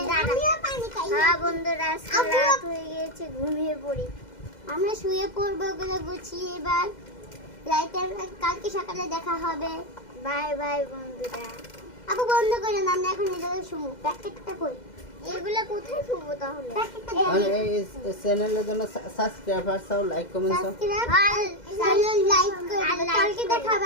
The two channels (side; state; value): right; late; 2.0 ms